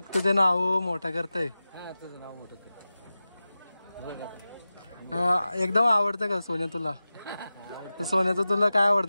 तुझे नाव मोठं करतय. एकदम आवडतं का सोन्या तुला? सोन्याचं तुला काय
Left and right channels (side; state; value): both; inverted; correlation -0.95